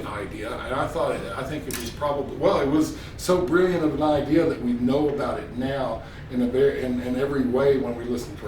idea, and I think it was probably, it was so brilliant of an idea that we know about it now in every way when we listen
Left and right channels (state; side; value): identical; both; correlation 1.00